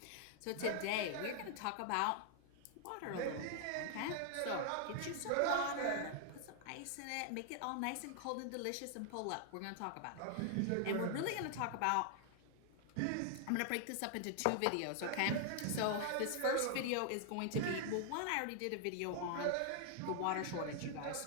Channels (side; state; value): both; different; correlation 0.00